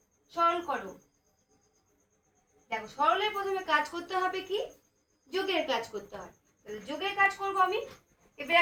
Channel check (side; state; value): both; identical; correlation 1.00